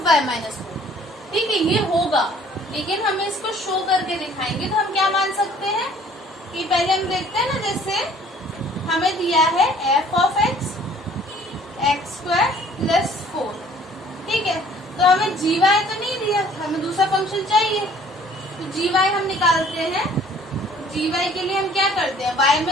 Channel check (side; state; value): both; normal; correlation 0.55